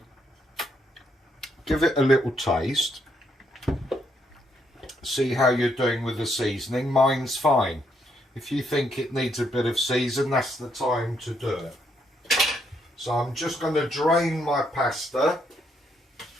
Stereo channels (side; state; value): both; normal; correlation 0.75